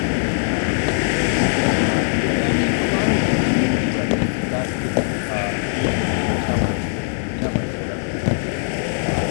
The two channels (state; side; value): silent; right; digital silence